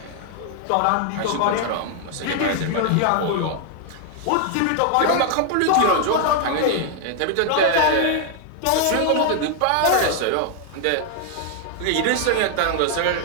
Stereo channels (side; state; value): both; different; correlation 0.00